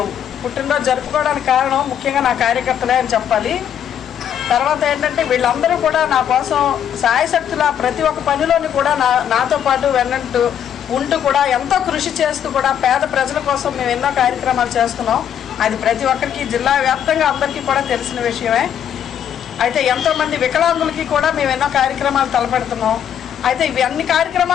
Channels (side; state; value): right; quieter; 9.3 dB